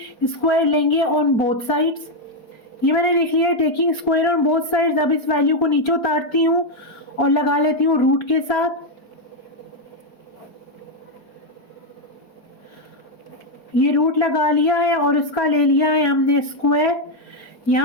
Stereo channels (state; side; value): late; right; 4.5 ms